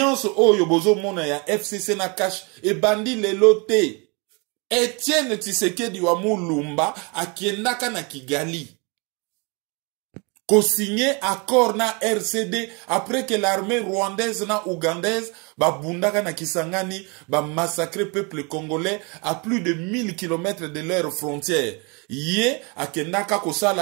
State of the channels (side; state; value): left; quieter; 31.1 dB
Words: Oyo Bozo Mona ya FCC na cash et bandi le loté. Etienne Tshisekedi wa Mulumba akiendaka na Kigali. Ko signé accord na RCD après que l'armée rwandaise na ougandaise ba bundaka na Kisangani ba massacrer peuple congolais à plus de 1000 km de leurs frontières. Yé akendaka ko